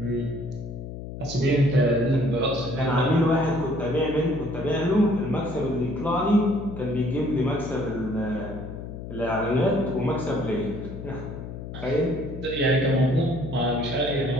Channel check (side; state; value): left; noise; hum, 9 dB below the sound